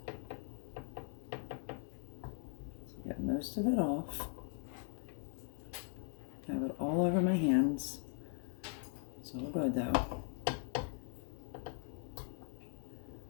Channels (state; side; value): silent; right; 51 dB below the other